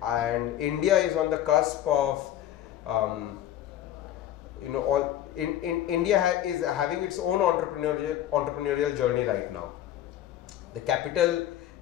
and India is on the cusp of India is having its own entrepreneurial journey right now. The capital,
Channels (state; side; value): quieter; right; 12.0 dB